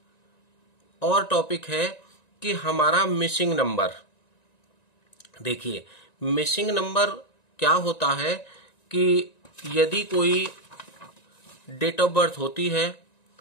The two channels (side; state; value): right; late; 1.9 ms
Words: और टॉपिक है कि हमारा मिसिंग नंबर। देखिए, मिसिंग नंबर क्या होता है कि यदि कोई डेट ऑफ बर्थ होती है